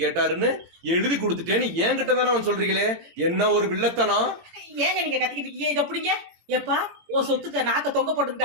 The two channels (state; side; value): late; left; 18 ms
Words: கேட்டாருன்னு எழுதி கொடுத்துட்டேன்னு என்கிட்ட தானே அவன் சொல்றீங்களே, என்ன ஒரு வில்லத்தனம். ஏங்க நீங்க கத்திக்கிட்டு இருக்கீங்க? இதை பிடிங்க. எப்பா உன் சொத்துக்க நாக்க தொங்க